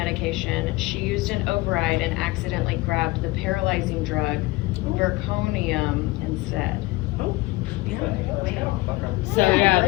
she used an override and accidentally grabbed the paralyzing drug, Verconium, instead. Yeah. So, yeah,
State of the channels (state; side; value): quieter; right; 21.1 dB